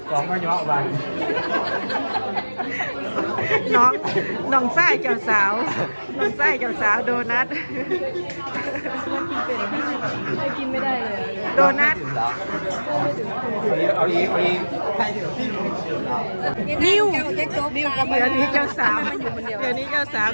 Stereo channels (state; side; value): inverted; both; correlation -1.00